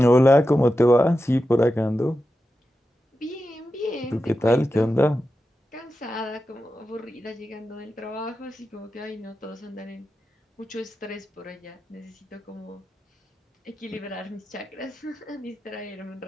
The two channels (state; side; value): normal; both; correlation 0.91